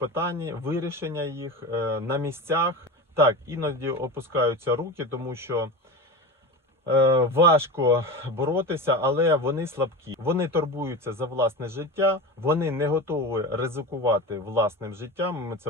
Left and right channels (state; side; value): normal; both; correlation 0.27